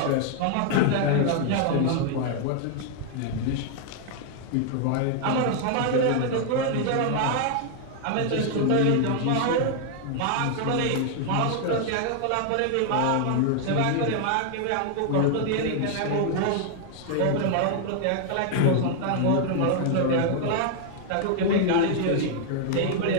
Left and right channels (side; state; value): both; different; correlation 0.00